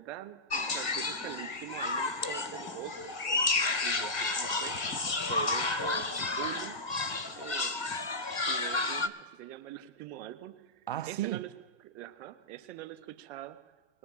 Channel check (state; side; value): late; right; 1.7 ms